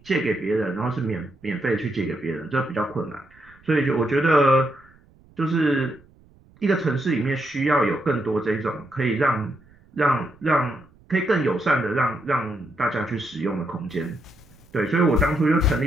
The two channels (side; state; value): right; noise; rumble, 28 dB below the sound